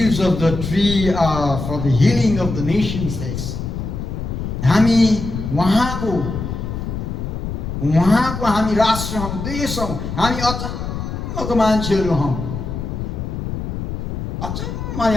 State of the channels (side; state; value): left; noise; rumble, 5 dB below the sound